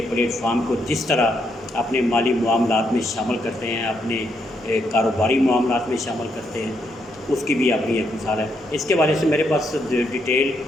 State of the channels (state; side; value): normal; both; correlation 0.77